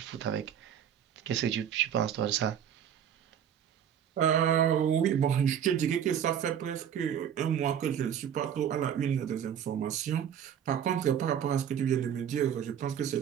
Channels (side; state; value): left; quieter; 9.1 dB